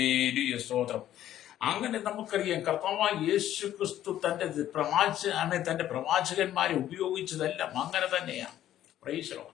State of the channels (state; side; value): quieter; right; 12.2 dB